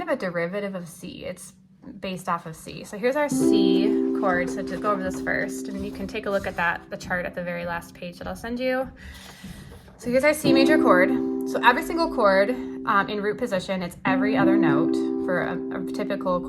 of a derivative of C. It's based off of C. So here's our C chord. So to go over this first, and you can take a look at the chart at the very last page that I'll send you. So here's our C major chord. So every single chord in root position, it's every other note for a typical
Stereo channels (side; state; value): both; identical; correlation 1.00